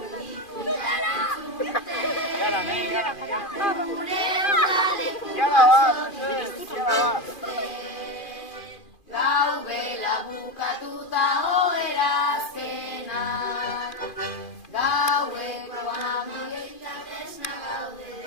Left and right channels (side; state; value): right; late; 2.4 ms